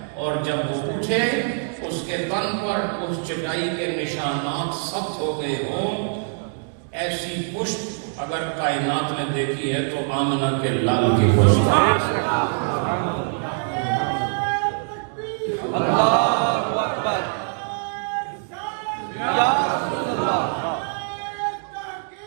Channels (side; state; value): left; silent; 63 dB below the other